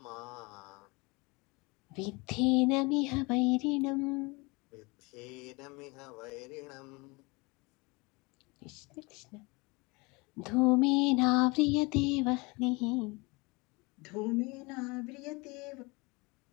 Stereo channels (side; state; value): right; quieter; 26.3 dB